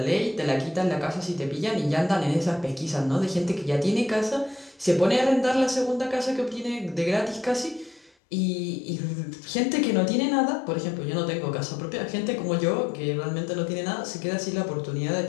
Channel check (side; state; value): right; drops out; at 8.2 s